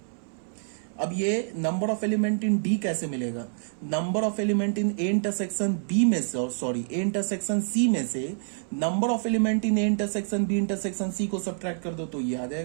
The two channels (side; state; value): left; silent; 60 dB below the other